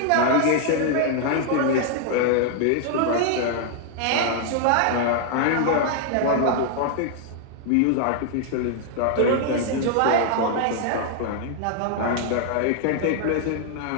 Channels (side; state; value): both; different; correlation 0.00